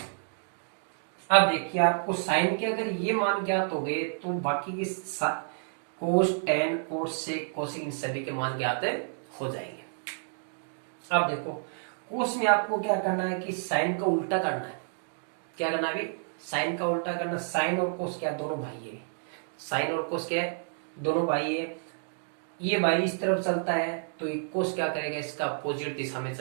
अब देखिए, आपको साइन के अगर ये मान ज्ञात हो गए तो बाकी के कोस, टेन, कोट, सेक, कोसेक, इन सभी के मान ज्ञात हो जाएंगे। अब देखो, कोस में आपको क्या करना है कि साइन का उल्टा करना है। क्या करना है? साइन का उल्टा करना। साइन और कोस क्या? दोनों भाई है। साइन और कोस क्या है? दोनों भाई है। ये भाई इस तरफ चलता है तो ये कोस क्या करेगा? इसका अपोजिट दिशा में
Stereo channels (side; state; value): left; silent; digital silence